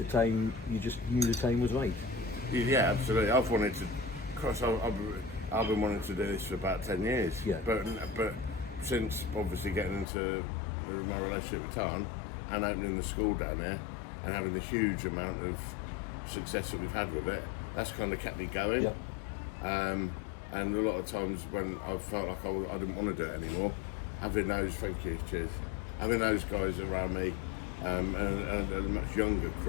time you just knew the time was right. Yeah, absolutely. I've wanted to course, I've been wanting to do this for about 10 years. Yeah. But since obviously getting into my relationship with Tarn and opening the school down there and having the huge amount of success that we've had with it, that's kind of kept me going. Yep. And a lot of times when I felt like I didn't want to do it anymore, having those, thank you, cheers, having those guys around me, and a much younger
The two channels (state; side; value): drops out; right; at 10.1 s